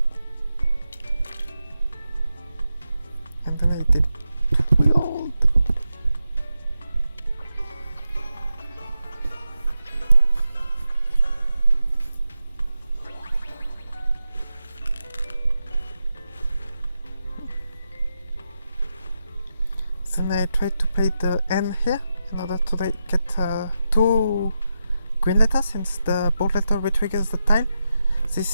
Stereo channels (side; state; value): both; inverted; correlation -0.88